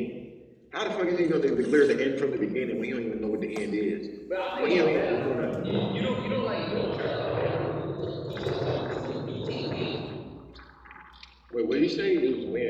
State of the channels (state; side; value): identical; both; correlation 1.00